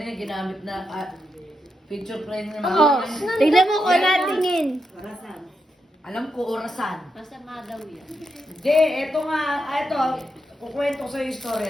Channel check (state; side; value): normal; both; correlation 0.84